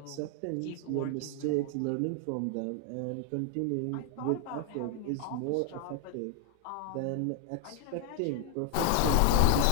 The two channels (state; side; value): different; both; correlation 0.00